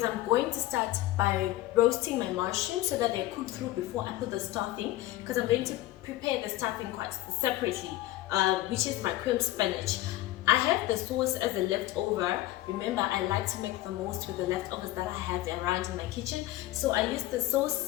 I'm going to start by roasting my mushrooms so that they cook through before I put the stuffing, because I'm going to prepare the stuffing quite separately, which is my cream spinach. I have the sauce as a leftover. Remember, I like to make the most with the leftovers that I have around in my kitchen. So I used the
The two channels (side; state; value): right; quieter; 16.1 dB